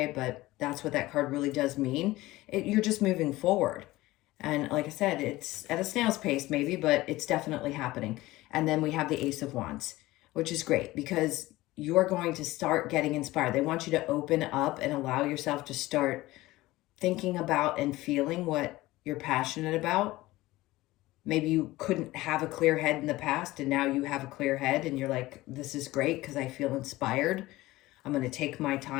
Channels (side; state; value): right; quieter; 18.3 dB